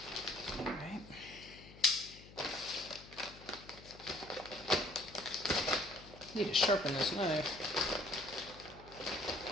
Alright. Need to sharpen this knife.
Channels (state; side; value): noise; left; hum, 18 dB below the sound